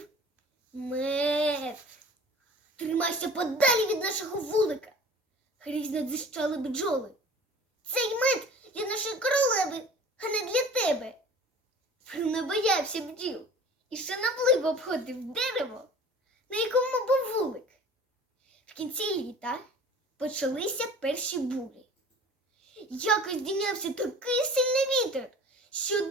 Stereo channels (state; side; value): normal; both; correlation 0.44